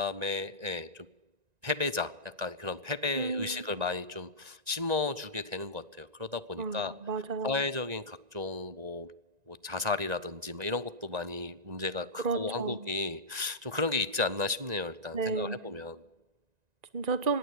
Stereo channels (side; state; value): left; late; 1.9 ms